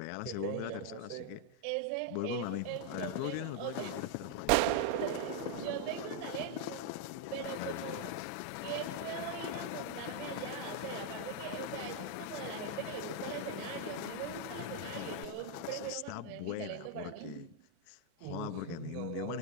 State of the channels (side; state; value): both; different; correlation 0.00